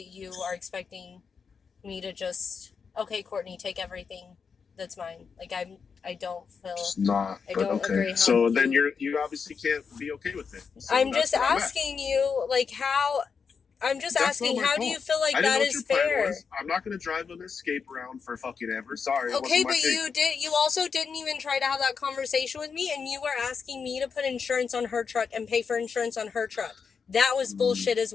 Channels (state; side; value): quieter; right; 5.8 dB